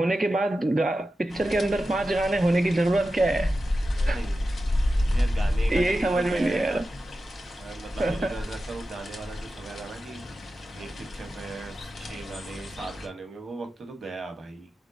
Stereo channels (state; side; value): normal; both; correlation 0.92